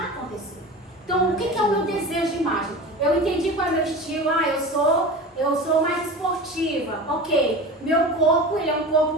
acontecer. Então, o que é o meu desejo de imagem? Eu entendi qual é o meu estilo. Eu sou mais esportiva. Ok. Meu corpo, ele é um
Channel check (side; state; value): both; normal; correlation 0.32